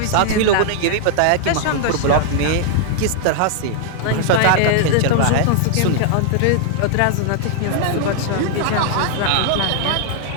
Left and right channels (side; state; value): both; different; correlation -0.01